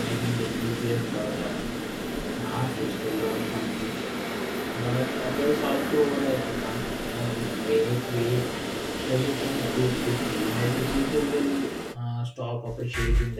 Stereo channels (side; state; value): both; identical; correlation 1.00